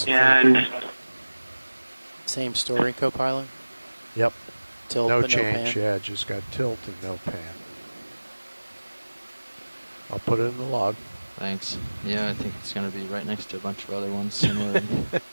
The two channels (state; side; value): inverted; both; correlation -1.00